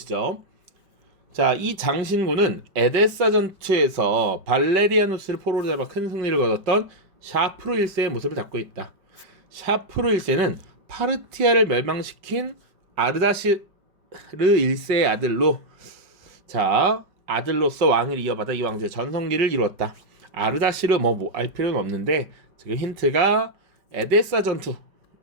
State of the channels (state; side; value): late; left; 5.3 ms